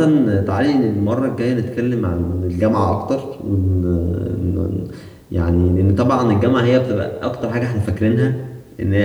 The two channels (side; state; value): both; identical; correlation 1.00